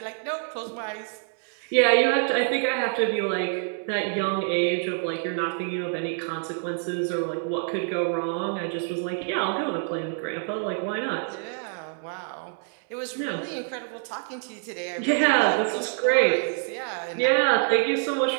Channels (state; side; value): silent; left; 56 dB below the other